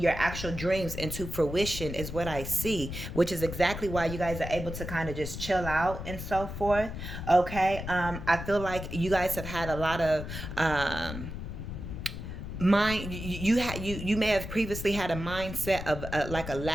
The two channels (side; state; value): left; noise; rumble, 8 dB below the sound